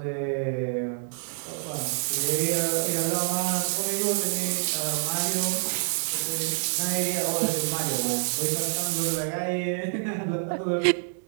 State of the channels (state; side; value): silent; left; digital silence